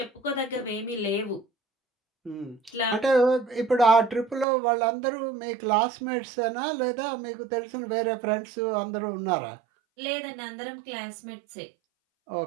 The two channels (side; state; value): left; drops out; at 4.5 s